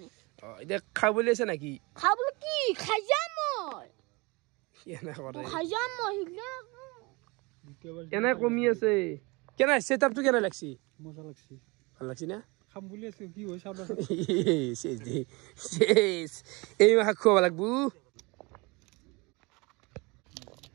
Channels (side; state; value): left; quieter; 26.2 dB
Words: এতিয়া খাব বুলি আছে নাকি খাব কি খাই যাম মই এনে কৰে খাই যাম মই এনে কমি আছে কেনে সেটআপটো কেনে লাগছি মজা লাগছি ভাল লাগছি না খাম বুলি আছে কি হয় চাব শেষ এই মাহ খুৱাব লাগবো